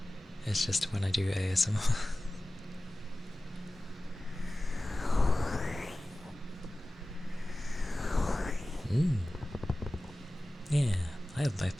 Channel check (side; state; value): both; normal; correlation 0.96